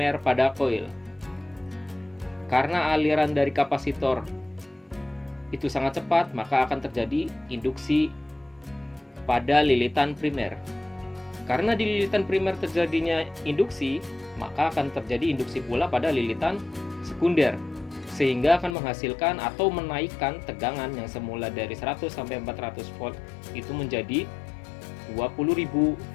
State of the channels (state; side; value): drops out; right; at 18.8 s